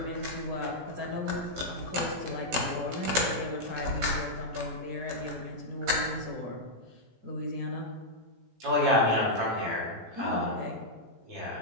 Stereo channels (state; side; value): late; left; 17 ms